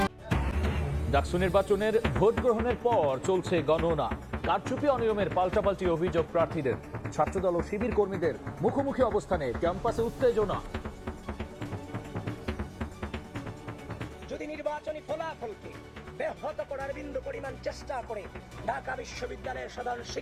ডাকসু নির্বাচনের ভোট গ্রহণের পর চলছে গণনা। কারচুপি অনিয়মের পাল্টাপাল্টি অভিযোগ প্রার্থীদের। ছাত্রদল ও শিবির কর্মীদের মুখোমুখি অবস্থানে ক্যাম্পাসে উত্তেজনা। যদি নির্বাচনী ফলাফলকে ব্যাহত করার বিন্দু পরিমাণ চেষ্টা করে ঢাকা বিশ্ববিদ্যালয়ের সাধারণ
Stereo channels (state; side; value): identical; both; correlation 1.00